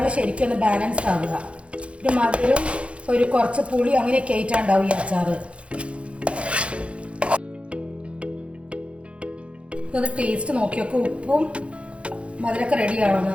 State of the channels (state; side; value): late; left; 0.061 ms